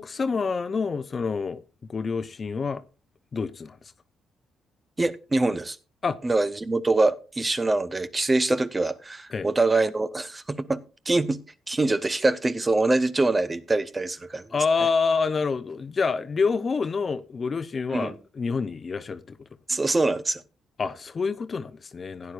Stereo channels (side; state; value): both; normal; correlation 0.91